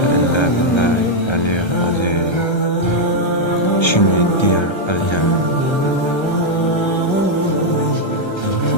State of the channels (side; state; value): right; late; 1.3 ms